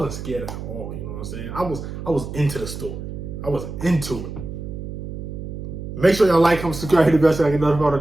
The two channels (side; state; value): right; noise; hum, 8 dB below the sound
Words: scared at all. You know what I'm saying? I was into the story. I was into it. Make sure y'all like, comment, subscribe, hit the bell so I can notify when